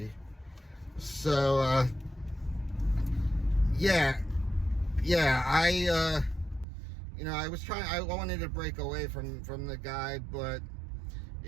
So I wanted to break away from the guy, but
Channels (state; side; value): drops out; left; at 6.7 s